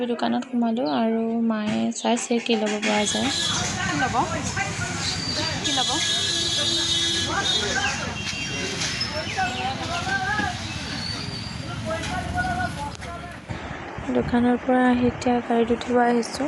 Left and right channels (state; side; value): identical; both; correlation 1.00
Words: দোকানত সোমালোঁ আৰু মায়ে চাইছে কি ল'ব পৰা যায়। কি ল'ব দোকানৰ পৰা আহি এতিয়া গাড়ীত উঠিব